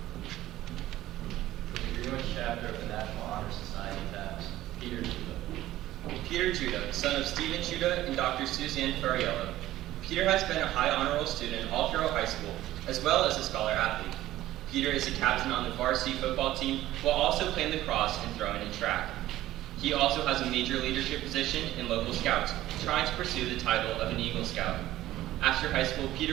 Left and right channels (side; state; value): left; quieter; 14.9 dB